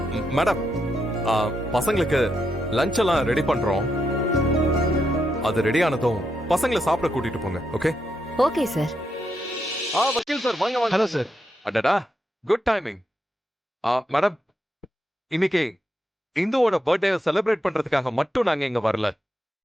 மேடம், பசங்களுக்கு லஞ்ச் எல்லாம் ரெடி பண்றோம். அது ரெடி ஆனதும் பசங்களை சாப்பிட கூட்டிட்டு போங்க. ஓகே? Okay sir. வக்கீல் சார், வாங்க வாங்க. Hello sir. அடடா, குட் டைமிங். மேடம், இன்னைக்கு இந்துவோட பர்த்டே செலிப்ரேட் பண்றதுக்காக மட்டும் நாங்க இங்க வரல.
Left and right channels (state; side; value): normal; both; correlation 0.82